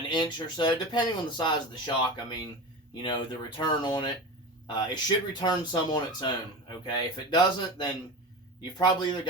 inch or so, depending on the size of the shock. I mean, you know, the return on it. It should return some on its own, okay? If it doesn't, then you've probably either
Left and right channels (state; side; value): normal; both; correlation 0.28